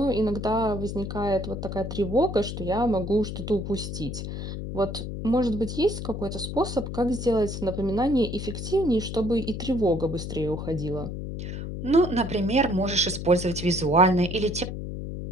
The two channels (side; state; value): left; noise; hum, 6 dB below the sound